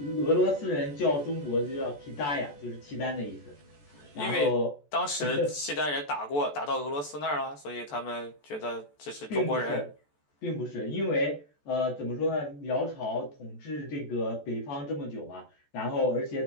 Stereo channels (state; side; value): late; right; 14 ms